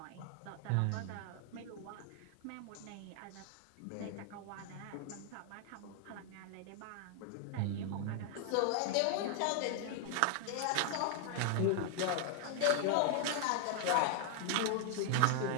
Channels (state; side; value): different; both; correlation 0.00